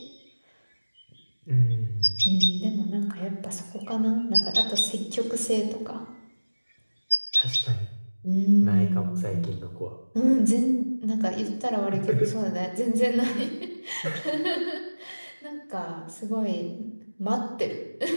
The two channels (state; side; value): inverted; both; correlation -1.00